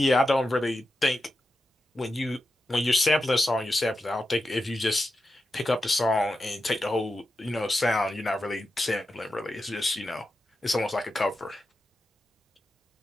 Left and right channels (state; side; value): normal; both; correlation 0.89